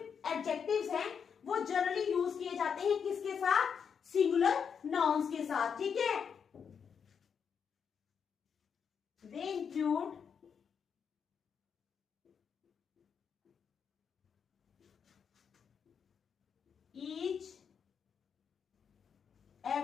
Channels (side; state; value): right; quieter; 6.9 dB